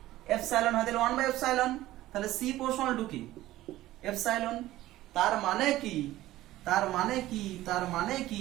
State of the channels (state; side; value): quieter; left; 15.7 dB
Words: এপসাইলন হয় তাহলে 1 বাই এপসাইলন, তাহলে সি প্রপোর্শনাল টু কি, এপসাইলন। তার মানে কি, তার মানে কি, তার মানে